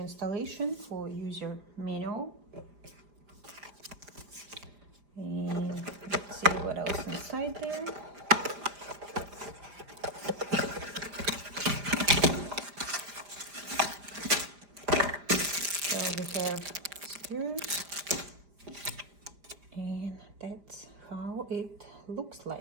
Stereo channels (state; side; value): late; left; 5.1 ms